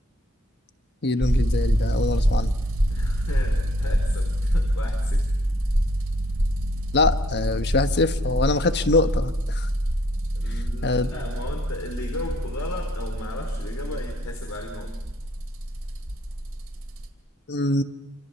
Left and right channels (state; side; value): normal; both; correlation 0.64